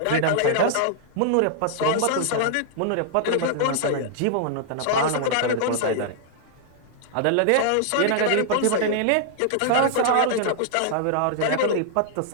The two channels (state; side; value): different; both; correlation -0.01